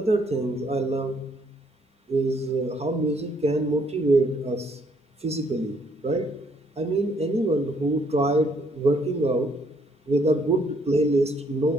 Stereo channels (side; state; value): both; normal; correlation 0.68